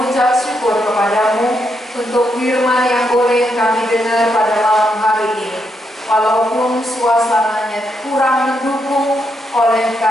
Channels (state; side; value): normal; both; correlation 0.80